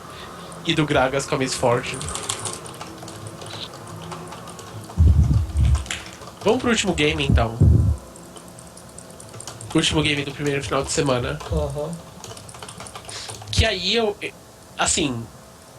E do Gragas com a Miss Fortune. Vamos pro último game, então. O último game do primeiro final de semana. Aham. Que aí eu... Assim...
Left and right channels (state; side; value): identical; both; correlation 1.00